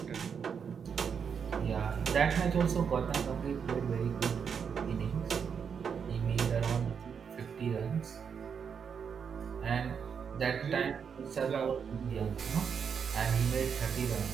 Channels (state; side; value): quieter; left; 6.8 dB